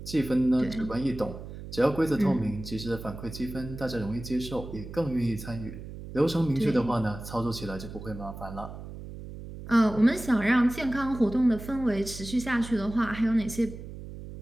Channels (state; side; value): noise; right; hum, 12 dB below the sound